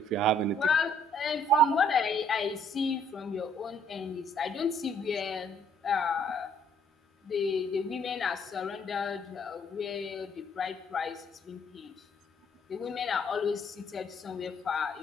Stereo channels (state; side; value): normal; both; correlation 0.64